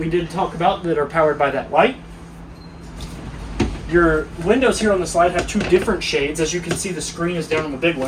did talk about that are powered by that light. Your windows here on the slide have 2 different shades. As you can see, the screen is down on the big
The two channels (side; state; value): both; identical; correlation 1.00